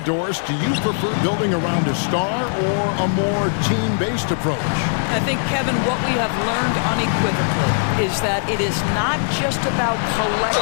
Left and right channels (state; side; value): silent; right; digital silence